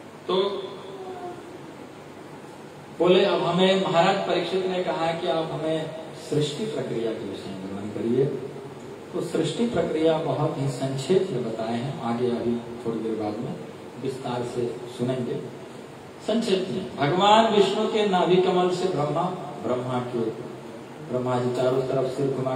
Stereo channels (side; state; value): both; identical; correlation 1.00